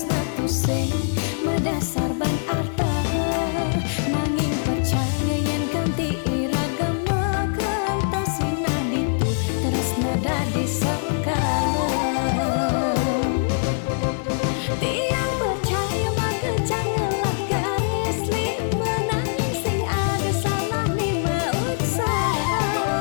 tusing medasar ban arta nanging percaya yen ganti iragama kentasina ditu tresna dadi sengkala. Tiang percaya maka janganlah garis lima nanging sing ada salah lima usaha.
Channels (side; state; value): right; silent; digital silence